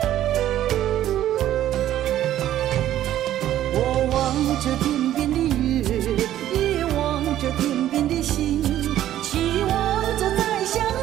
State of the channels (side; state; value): left; quieter; 12.5 dB